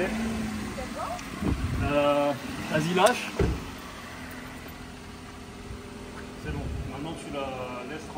Vas-y, lâche. C'est bon. Maintenant, tu la laisses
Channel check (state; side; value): identical; both; correlation 1.00